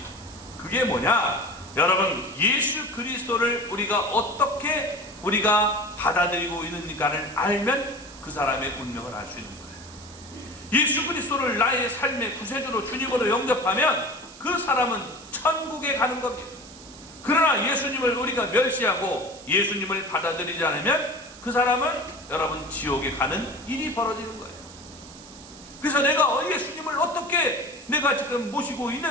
그게 뭐냐? 여러분 예수 그리스도를 어떻게 우리가 받아들이고 있는가를 알면 그 사람의 운명을 알 수 있는 거예요. 예수 그리스도를 나의 삶의 구세주로 주님으로 영접하면 그 사람은 천국에 가는 겁니다. 그러나 예수님을 우리가 멸시하고 예수님을 받아들이지 않으면 그 사람은 여러분 지옥에 가는 일이 벌어지는 거예요. 그래서 내가 예수님을 어떻게 내가 지금 모시고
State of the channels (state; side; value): noise; right; hiss, 18 dB below the sound